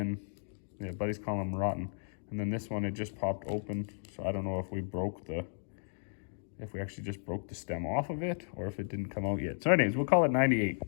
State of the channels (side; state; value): right; silent; digital silence